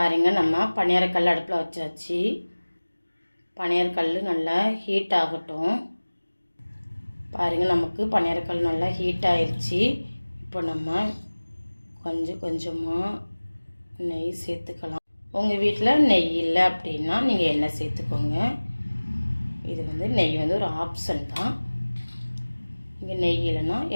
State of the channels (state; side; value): inverted; both; correlation -1.00